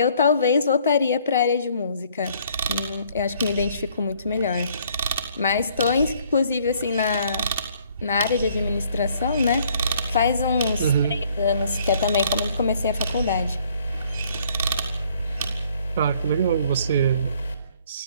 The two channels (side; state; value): both; inverted; correlation -0.62